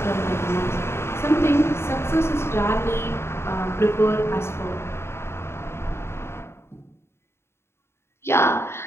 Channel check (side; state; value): right; late; 0.12 ms